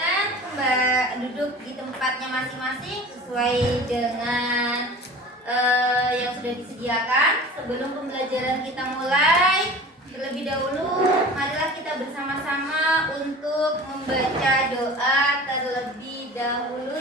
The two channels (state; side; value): normal; both; correlation 0.39